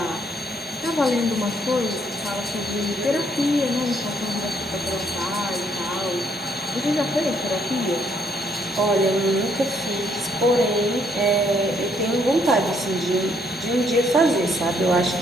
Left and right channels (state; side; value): normal; both; correlation 0.69